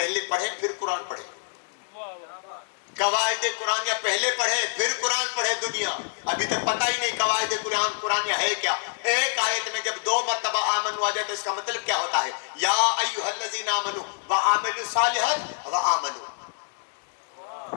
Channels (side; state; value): right; silent; digital silence